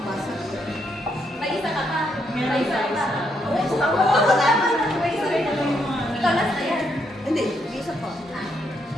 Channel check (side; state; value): both; normal; correlation 0.76